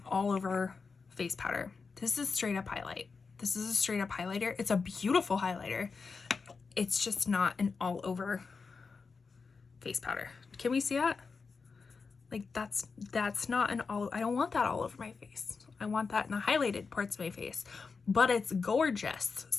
all over face powder. This is straight up highlight. This is a straight up highlighter. It's a beautiful highlighter. It's just not an all over face powder. Can we see that? Like that's not an all, I don't want that all over my face. I want that in the highlighted parts of my face, but it's gorgeous.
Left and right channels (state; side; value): quieter; right; 4.8 dB